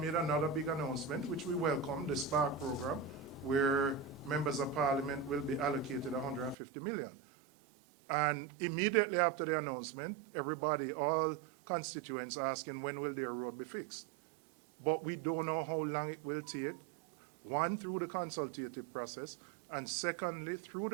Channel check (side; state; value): left; drops out; at 6.6 s